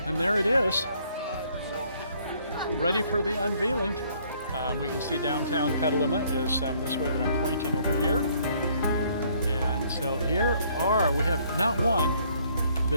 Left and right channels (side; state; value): both; inverted; correlation -0.64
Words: And there it is, ready for the unveiling. We can see downtown Petaluma is this way that I'm pointing over here. And so here we have not one,